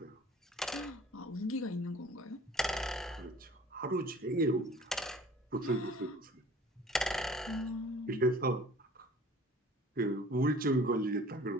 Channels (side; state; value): both; normal; correlation 0.49